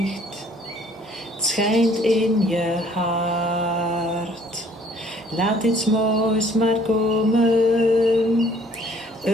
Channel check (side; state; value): both; normal; correlation 0.58